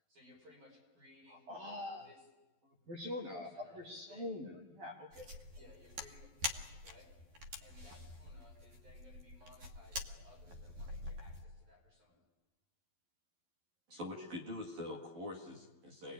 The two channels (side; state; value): left; late; 12 ms